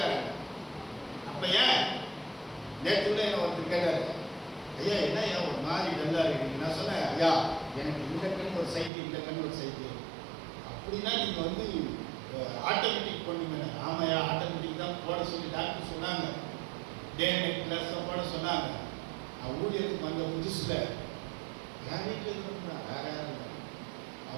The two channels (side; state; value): left; drops out; at 8.9 s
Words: அப்ப ஏன்? நேற்று கூட என்ன ஒருத்தர் கேட்டாரு, ஐயா என்ன ஏன் ஒரு மாதிரி டல்லா இருக்கு? நான் சொன்னேன், ஐயா எனக்கு இந்த கண் ஒரு சைட்டு, இந்த கண் ஒரு சைட்டு, அப்படின்னா நீங்க வந்து ஆட்டோமேட்டிக் பண்ணுங்க. ஆமாயா ஆட்டோமேட்டிக் தான் போட சொல்லி டாக்டர் சொன்னாங்க, டே நைட் கிளாஸ் போட சொன்னாங்க. நான் ஊழியருக்கு வந்த புதுசுல என் வீட்டில் இருந்தா வேற யாரும் இல்லை,